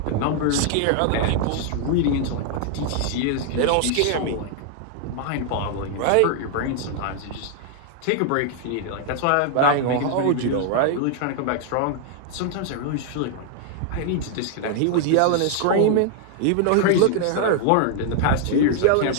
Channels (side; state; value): both; different; correlation 0.00